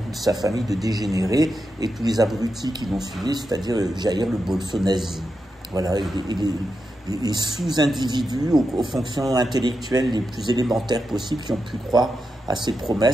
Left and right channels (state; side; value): normal; both; correlation 0.87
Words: sa famille de dégénérés et tous les abrutis qui l'ont suivi, c'est-à-dire Jair le bolso-nazi. Voilà, les sous-individus aux fonctions intellectuelles les plus élémentaires possibles qui ont pu croire à ses